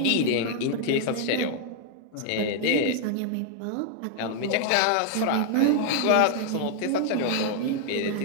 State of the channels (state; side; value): different; both; correlation 0.00